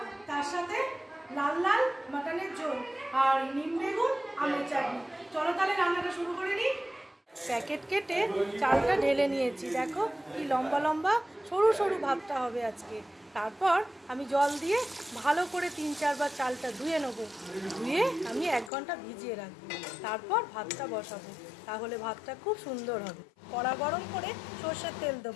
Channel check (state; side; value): drops out; right; at 18.7 s